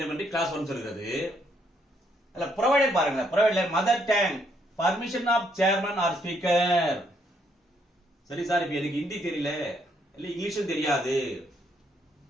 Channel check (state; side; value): normal; both; correlation 0.72